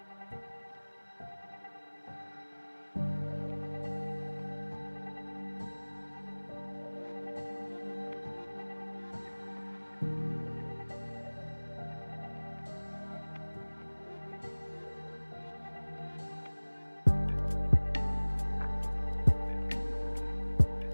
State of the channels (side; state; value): both; inverted; correlation -1.00